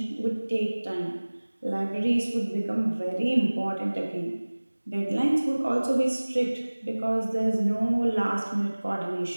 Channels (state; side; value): inverted; both; correlation -1.00